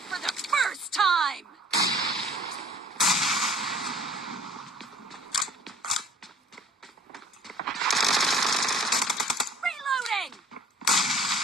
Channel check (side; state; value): both; normal; correlation 0.50